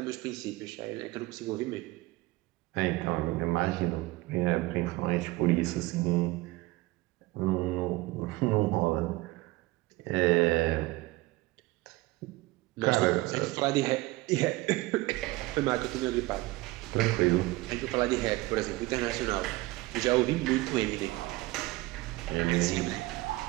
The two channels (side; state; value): left; quieter; 20.3 dB